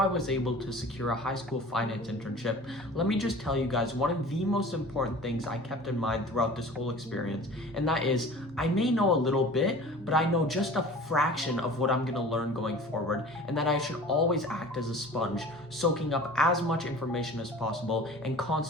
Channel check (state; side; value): normal; both; correlation 0.42